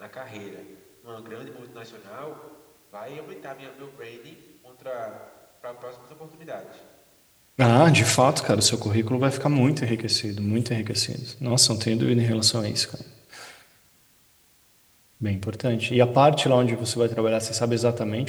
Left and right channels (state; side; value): identical; both; correlation 1.00